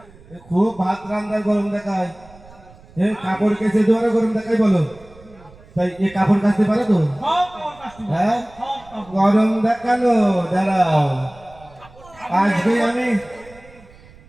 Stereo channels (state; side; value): noise; right; rumble, 24 dB below the sound